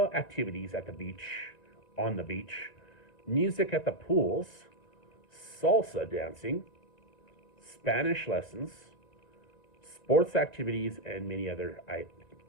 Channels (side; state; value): right; late; 1.9 ms